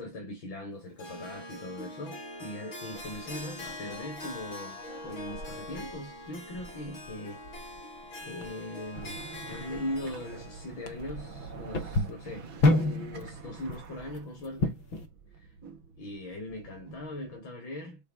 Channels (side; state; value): right; late; 6.0 ms